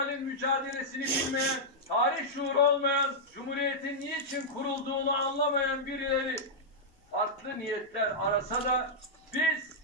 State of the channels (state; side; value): normal; both; correlation -0.08